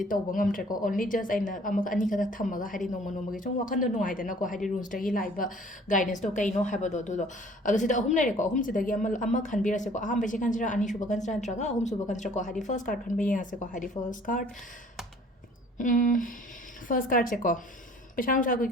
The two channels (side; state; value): both; normal; correlation 0.53